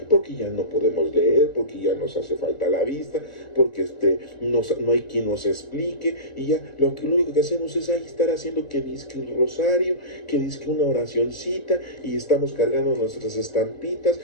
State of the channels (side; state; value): right; late; 1.9 ms